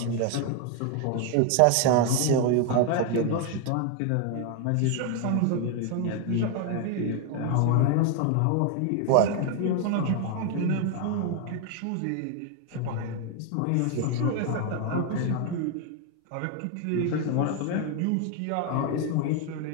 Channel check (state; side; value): different; both; correlation 0.01